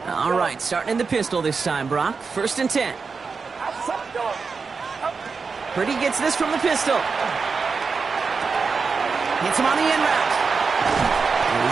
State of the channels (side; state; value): left; quieter; 5.0 dB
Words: All right, starting in the pistol this time, Brock. 1st and 10. Purdy gets this from the pistol. Hits him on the in route. And